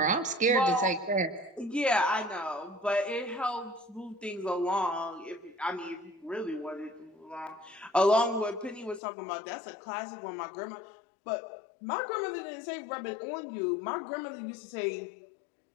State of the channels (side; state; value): right; drops out; at 9.0 s